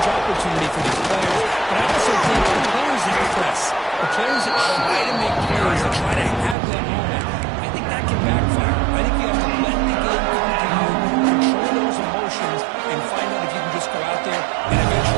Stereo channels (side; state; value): left; drops out; at 6.6 s